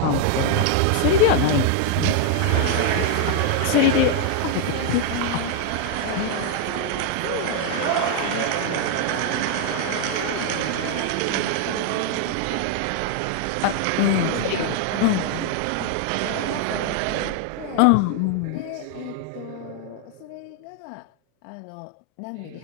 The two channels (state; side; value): different; both; correlation 0.00